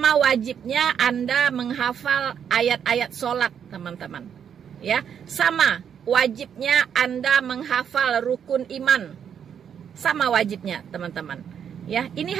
wajibnya Anda menghafal ayat-ayat sholat teman-teman. Ya, sama wajibnya Anda menghafal rukun iman. Sama wajibnya teman-teman. Ya, ini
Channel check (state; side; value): quieter; left; 8.1 dB